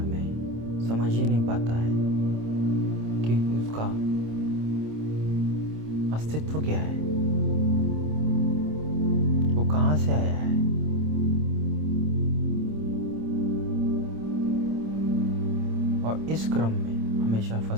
में समझ ही नहीं पाता है कि उसका अस्तित्व क्या है, वो कहाँ से आया है। और इस क्रम में हमेशा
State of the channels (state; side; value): late; left; 26 ms